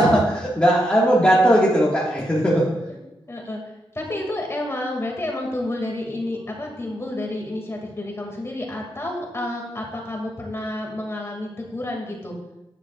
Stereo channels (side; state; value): both; normal; correlation 0.82